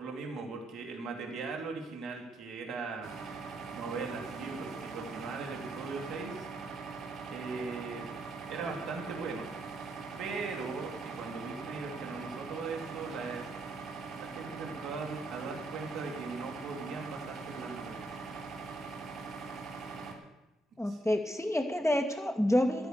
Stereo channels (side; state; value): both; normal; correlation 0.77